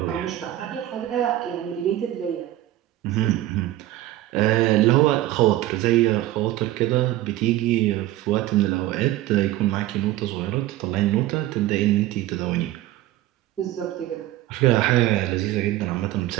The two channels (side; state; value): left; quieter; 15.0 dB